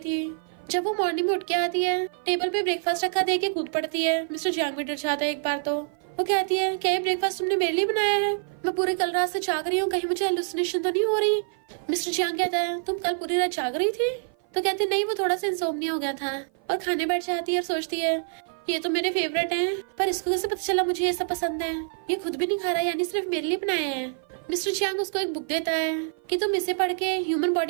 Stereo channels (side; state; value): left; silent; 55 dB below the other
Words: जब वो मॉर्निंग में उठ के आती है टेबल पे ब्रेकफास्ट रखा देख के कूद पड़ती है। मिस्टर जियांग भी डर जाता है एक बार तो। वो कहती है क्या ये ब्रेकफास्ट तुमने मेरे लिए बनाया है? मैं पूरी कल रात से जाग रही हूँ, कहीं मुझे हेलुसिनेशन तो नहीं हो रही? मिस्टर जियांग कहता है तुम कल पूरी रात जाग रही थी? तो कहती नहीं वो थोड़ा सा इंसोम्निया हो गया था। और खाने बैठ जाती है और सोचती है ये तो मेरे फेवरेट हैं, पर इसको कैसे पता चला मुझे ये सब पसंद है? ये खुद भी नहीं खा रहा यानी सिर्फ मेरे लिए बनाए हैं। मिस्टर जियांग उसको एक बुक देता है कि तुम इसे पढ़ के ह्यूमन